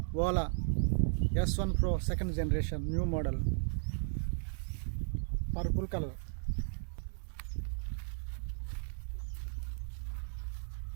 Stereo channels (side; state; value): left; silent; 54 dB below the other